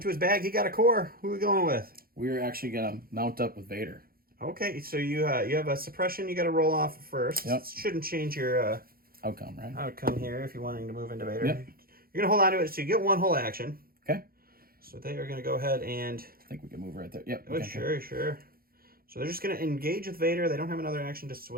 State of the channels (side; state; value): left; late; 0.43 ms